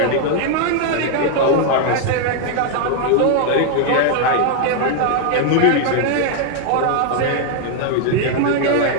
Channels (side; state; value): both; different; correlation 0.00